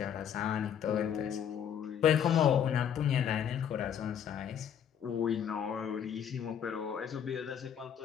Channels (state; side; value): quieter; right; 8.7 dB